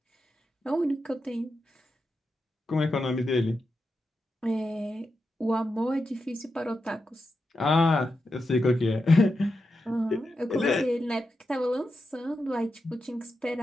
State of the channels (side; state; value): both; normal; correlation 0.88